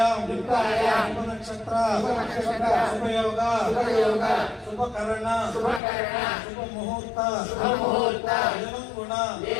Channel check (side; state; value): right; drops out; at 5.8 s